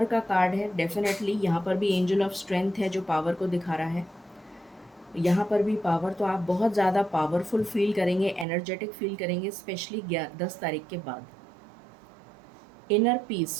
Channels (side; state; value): left; drops out; at 8.5 s